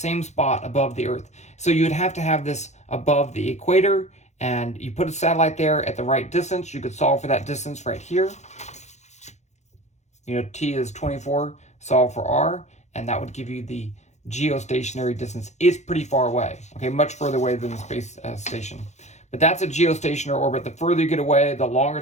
spot above the Earth. So you would have to have this above the equator, and you put a satellite there at the right distance. You could solve for that distance right here. You know, T is 24, solve for R, and that would give you the geostationary distance. It's pretty far away, okay, much further away than the space station. But that's a geostationary orbit. The further you get away, the longer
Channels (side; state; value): right; late; 0.33 ms